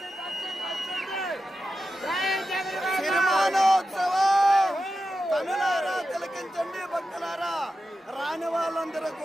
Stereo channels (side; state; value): both; normal; correlation 0.90